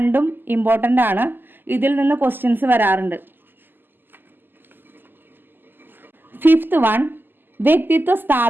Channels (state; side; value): late; left; 0.093 ms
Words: ഇമ്പോർട്ടൻ്റ് ആണ്. ഇതിൽ നിന്ന് ക്വസ്റ്റ്യൻസ് വരാറുണ്ട്. ഫിഫ്ത്ത് വൺ വ്യക്തിത്വ